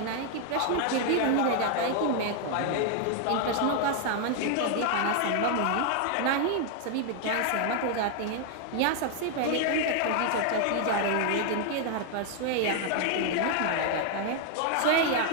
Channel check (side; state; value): both; different; correlation 0.00